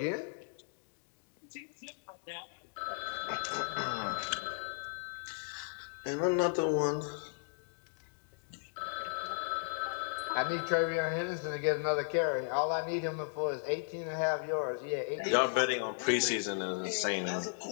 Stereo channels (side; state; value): right; silent; digital silence